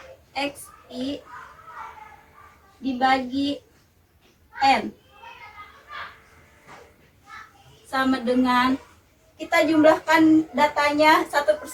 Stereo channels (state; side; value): identical; both; correlation 1.00